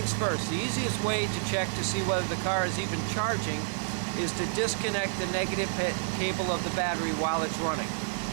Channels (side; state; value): left; silent; digital silence